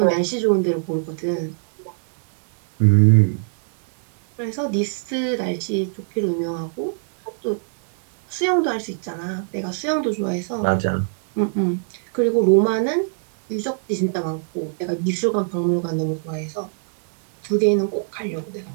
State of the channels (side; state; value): left; silent; digital silence